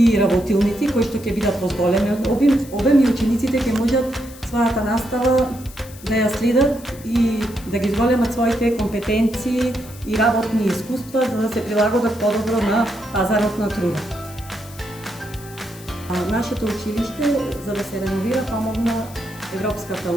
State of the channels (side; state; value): left; noise; hiss, 19 dB below the sound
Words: работилници кои што ќе бидат во зголемен обем и учениците ќе можат својата настава да ја следат и да ги зголемат своите компетенции и работни искуства за да се прилагодат подобро на пазарот на труда. Нашето училиште, за да се реновира, помогна Европската